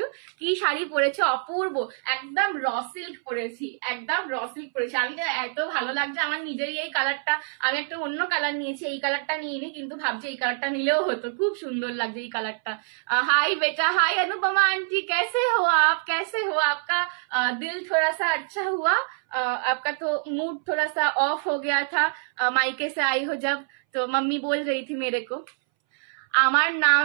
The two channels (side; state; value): left; silent; 61 dB below the other